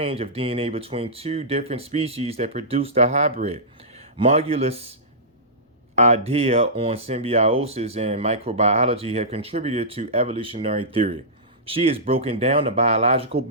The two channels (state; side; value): normal; both; correlation -0.17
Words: of DNA between two different species that produce the hybrid. Margulis' idea on symbiosis and microbiology have contributed to evolutionary theory. She has broken down the biological